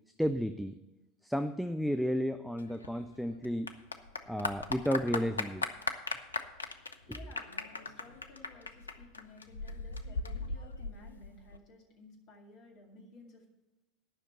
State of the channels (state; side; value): normal; both; correlation 0.55